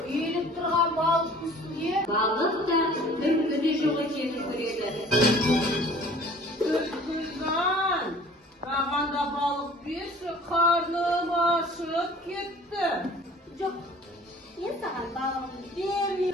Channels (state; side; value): normal; both; correlation 0.49